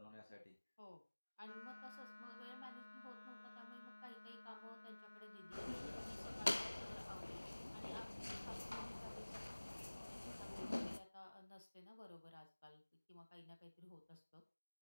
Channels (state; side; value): inverted; both; correlation -1.00